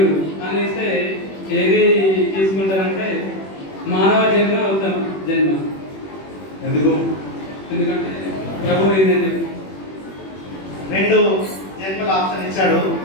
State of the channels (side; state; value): right; late; 21 ms